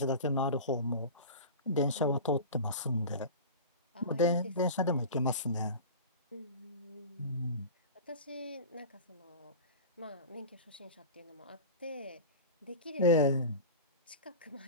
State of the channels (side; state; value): both; inverted; correlation -0.32